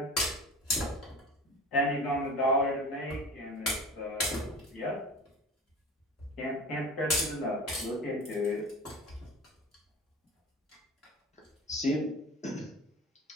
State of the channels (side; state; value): both; normal; correlation 0.36